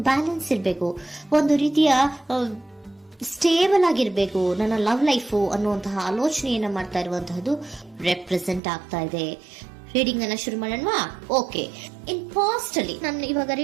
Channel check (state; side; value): drops out; left; at 8.6 s